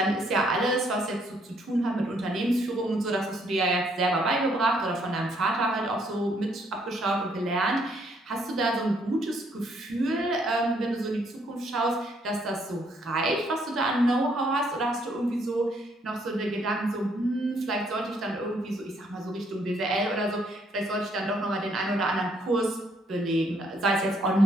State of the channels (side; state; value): both; normal; correlation 0.69